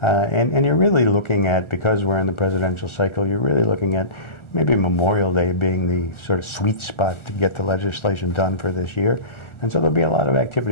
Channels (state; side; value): late; right; 1.4 ms